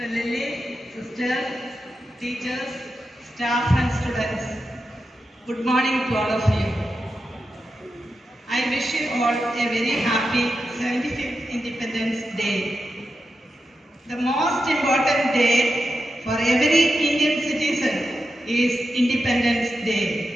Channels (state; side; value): normal; both; correlation 0.89